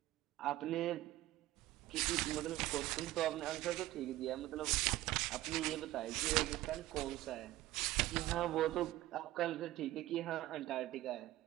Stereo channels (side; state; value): left; quieter; 16.0 dB